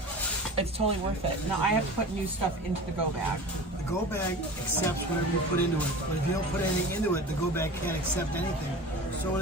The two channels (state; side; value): normal; both; correlation 0.35